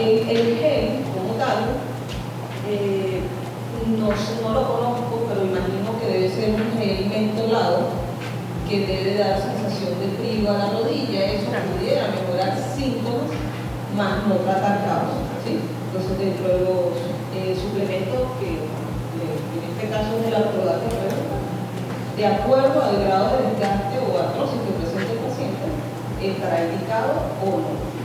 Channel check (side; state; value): both; identical; correlation 1.00